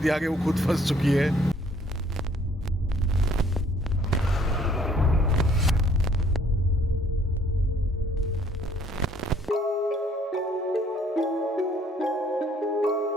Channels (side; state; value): both; normal; correlation 0.61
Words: थी आगे, वो खुद फंस चुकी है।